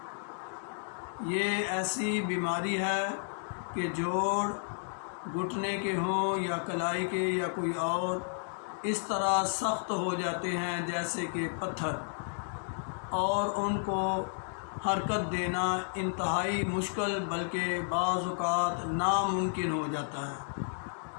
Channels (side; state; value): right; silent; digital silence